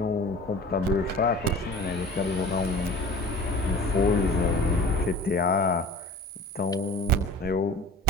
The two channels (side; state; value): both; normal; correlation 0.41